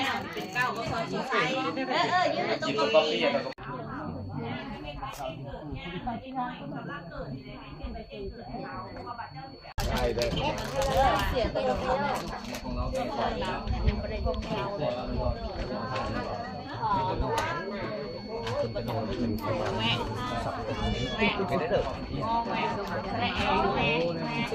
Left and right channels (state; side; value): identical; both; correlation 1.00